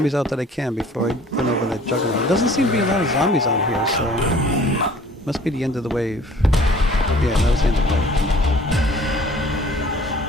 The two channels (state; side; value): normal; both; correlation 0.51